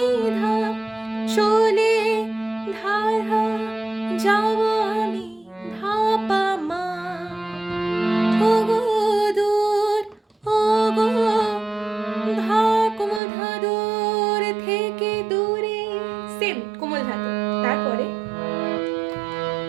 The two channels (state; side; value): drops out; left; at 13.2 s